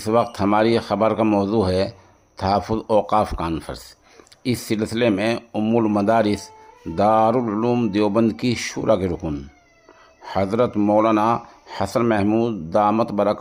وقت ہماری خبر کا موضوع ہے تحفظ اوقاف کانفرنس۔ اس سلسلے میں ام المدارس دارالعلوم دیوبند کی شورا کے رکن حضرت مولانا حسن محمود دامت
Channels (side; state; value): both; identical; correlation 1.00